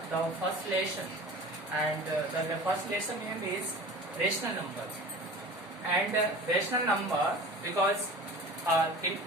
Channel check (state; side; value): normal; both; correlation 0.38